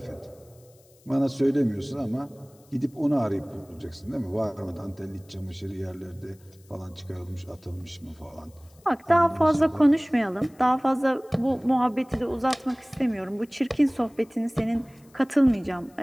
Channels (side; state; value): left; noise; hiss, 30 dB below the sound